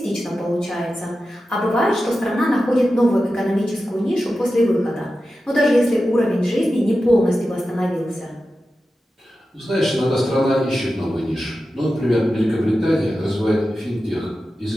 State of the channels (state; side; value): normal; both; correlation 0.92